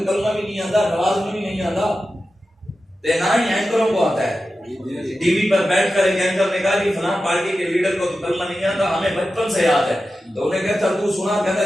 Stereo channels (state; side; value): normal; both; correlation 0.92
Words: کلمہ بھی نہیں آتا، نواز میں بھی نہیں آتا، تے نہ ہی اینکروں کو آتا ہے۔ ٹی وی پر بیٹھ کر ایک اینکر نے کہا کہ فلاں پارٹی کے لیڈر کو تو کلمہ نہیں آتا، ہمیں بچپن سے یاد ہے۔ تو انہیں کہا چل تو سنا،